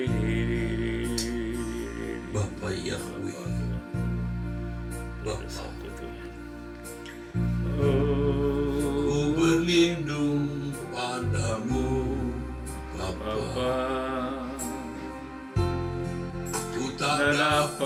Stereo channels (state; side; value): identical; both; correlation 1.00